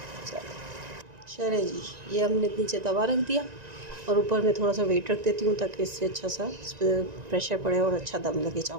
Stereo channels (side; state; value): left; late; 1.9 ms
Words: चले जी, ये हमने नीचे तवा रख दिया और ऊपर मैं थोड़ा सा वेट रख देती हूँ ताकि इससे अच्छा सा इस पर प्रेशर पड़े और अच्छा दम लगे